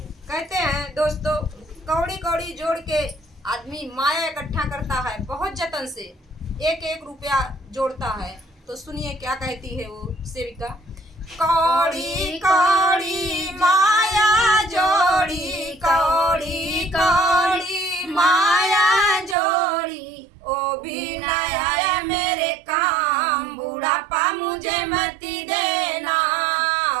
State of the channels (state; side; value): drops out; left; at 19.4 s